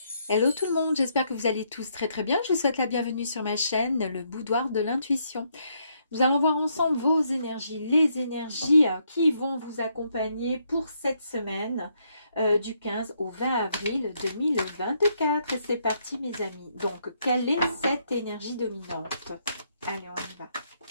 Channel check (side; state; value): both; inverted; correlation -0.74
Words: Hello tout le monde, j'espère que vous allez tous très très bien. Je vous souhaite la bienvenue sur ma chaîne, le boudoir de l'intuition. Nous allons voir ensemble vos énergies, les énergies qui vont vous accompagner pour cette semaine du 15 au 20 avril 2024. Et c'est parti mes amis. Donc, quelle est cette énergie dominante? Allez, on y va.